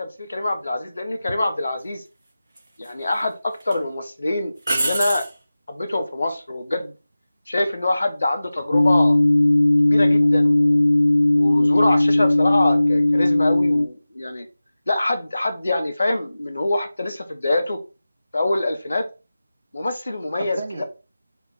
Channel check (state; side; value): inverted; both; correlation -0.97